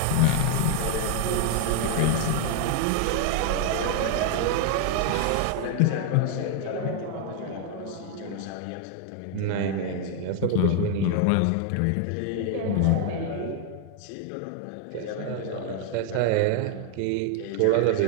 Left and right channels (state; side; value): different; both; correlation 0.00